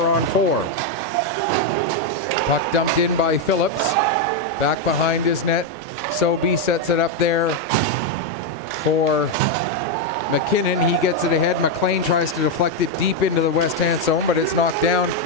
Puck dumped in by Phillips. Back behind his net. Sobey sets it up there for McKinnon. He gets it ahead. McLean tries to deflect it deep into the west-hand zone, but it's knocked down.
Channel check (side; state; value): both; normal; correlation 0.03